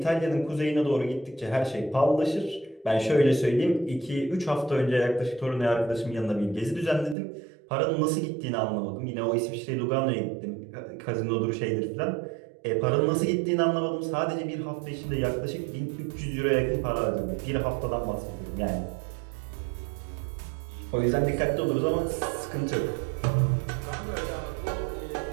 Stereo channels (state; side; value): drops out; left; at 7.2 s